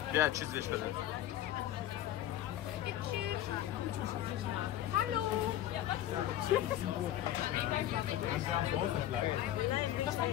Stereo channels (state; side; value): quieter; right; 12.8 dB